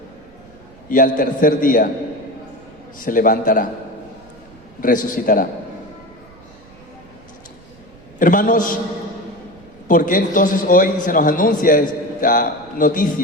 Y al tercer día se levantará, resucitará. Hermanos, ¿por qué entonces hoy se nos anuncia esta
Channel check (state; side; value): noise; right; rumble, 25 dB below the sound